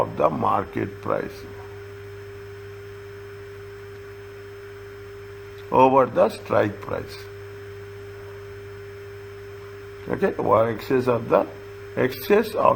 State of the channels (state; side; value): identical; both; correlation 1.00